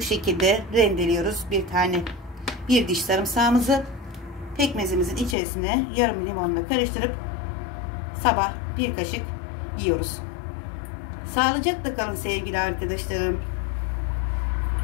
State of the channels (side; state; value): right; drops out; at 5.4 s